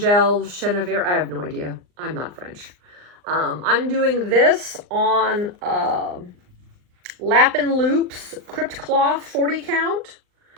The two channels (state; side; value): late; left; 39 ms